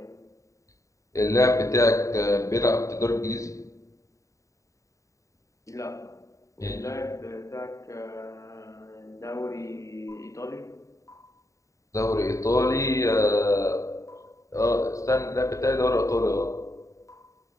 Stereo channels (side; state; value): right; late; 0.16 ms